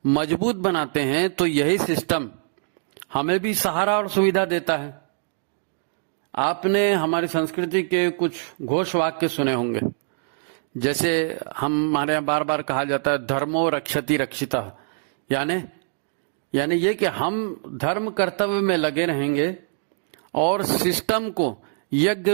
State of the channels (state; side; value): silent; left; digital silence